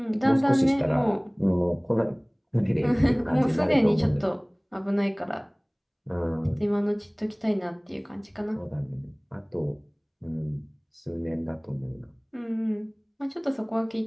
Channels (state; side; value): identical; both; correlation 1.00